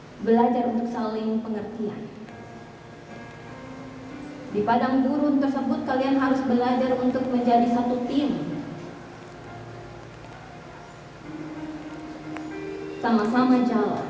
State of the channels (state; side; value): identical; both; correlation 1.00